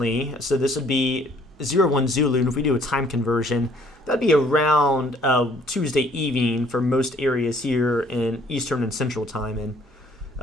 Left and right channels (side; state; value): both; normal; correlation 0.61